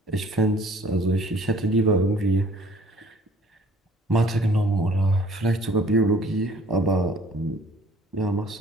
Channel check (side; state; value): both; normal; correlation 0.55